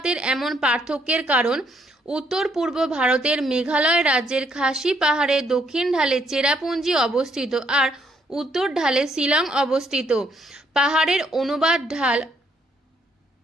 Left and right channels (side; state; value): both; normal; correlation 0.71